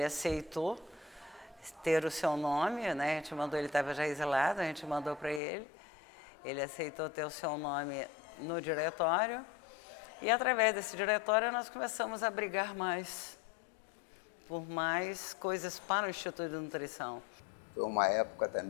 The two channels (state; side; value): drops out; right; at 5.4 s